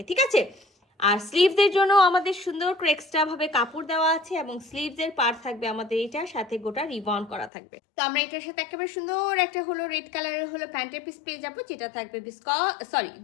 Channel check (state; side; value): drops out; right; at 7.5 s